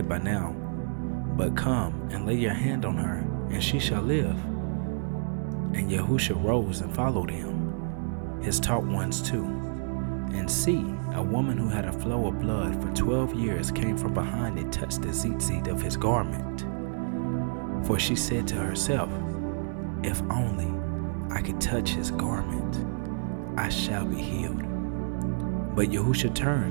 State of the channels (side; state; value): left; silent; digital silence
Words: by now, but come and lay your hand on her, and she shall live. And YaHUsHa rose and followed him, his taught ones too. And see, a woman who had a flow of blood for 12 years came from behind and touched the tzitzit of his garment. For she said to herself, if only I could touch his garment, I shall be healed. But YaHUsHa